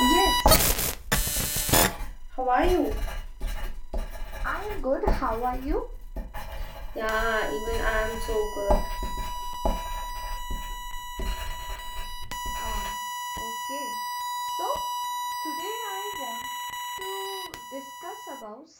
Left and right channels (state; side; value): identical; both; correlation 1.00